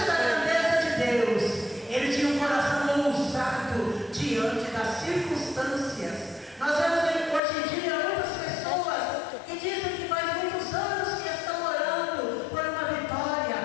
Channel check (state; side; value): drops out; right; at 7.4 s